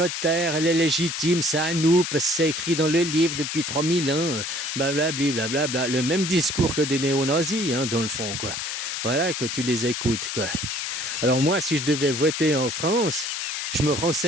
terre, elle est légitime, c'est à nous, parce que c'est écrit dans le livre depuis 3000 ans, blablabla, blablabla. Le même discours que des néo-nazis, hein, dans le fond, quoi. Voilà, que tu les écoutes, quoi. Alors moi, si je devais voter en France, je me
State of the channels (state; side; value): noise; left; hiss, 4 dB below the sound